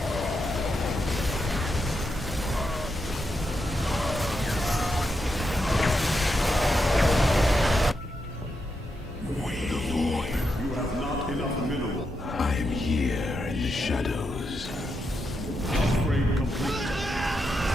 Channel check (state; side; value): normal; both; correlation 0.84